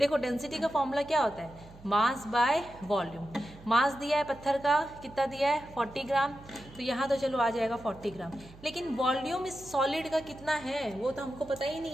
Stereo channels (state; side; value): noise; right; hum, 21 dB below the sound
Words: डेंसिटी का फॉर्मूला क्या होता है, मास बाय वॉल्यूम। मास दिया है पत्थर का, कितना दिया है 40 ग्राम, तो यहाँ तो चलो आ जाएगा 40 ग्राम। लेकिन वॉल्यूम इस सॉलिड का कितना है वो तो हमको पता ही नहीं